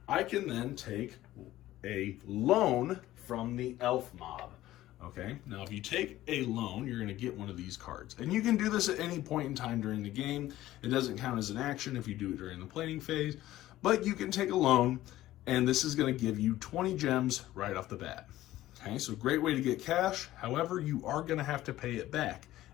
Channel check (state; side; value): quieter; right; 15.1 dB